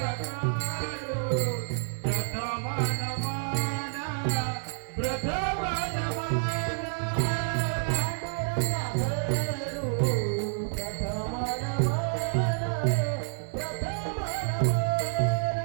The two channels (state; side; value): silent; left; 56 dB below the other